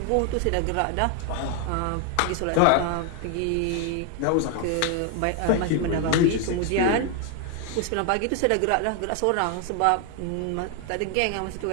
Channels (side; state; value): both; different; correlation 0.01